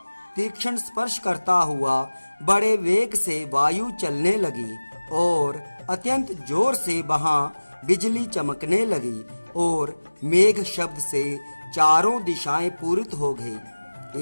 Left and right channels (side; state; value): both; inverted; correlation -1.00